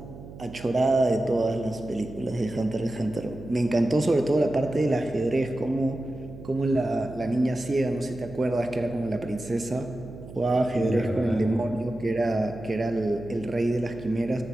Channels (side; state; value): right; noise; hum, 15 dB below the sound